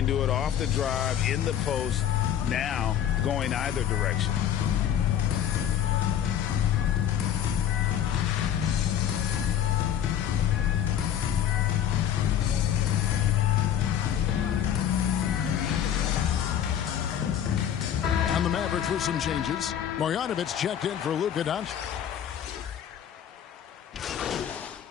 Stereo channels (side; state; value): right; quieter; 9.9 dB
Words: do it off the drive, in the post, now going either direction. On the Mavericks with some changes. Marjanovic checked in for Luka Doncic.